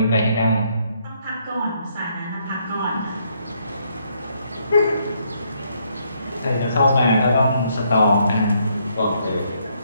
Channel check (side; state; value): both; inverted; correlation -0.72